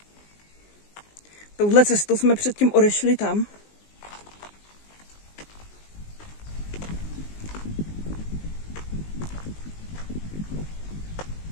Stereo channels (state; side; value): late; right; 19 ms